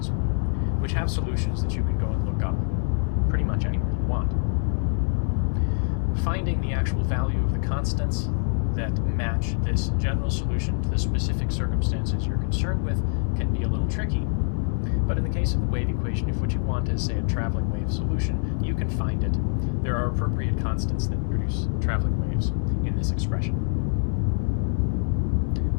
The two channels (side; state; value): right; silent; 62 dB below the other